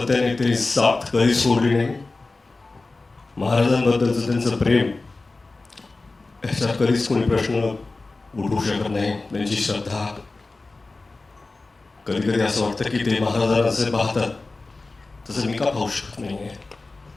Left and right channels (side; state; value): right; quieter; 3.4 dB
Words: ते साथ कधी सोडली नाही. महाराजांबद्दलचं त्यांचं प्रेम याच्यात कधीच कोणी प्रश्न उठवू शकत नाही. त्यांची श्रद्धा, कधी कधी असं वाटतं की ते महाराजांना जसे पाहतात तसं मी का पाहू शकत नाहीये.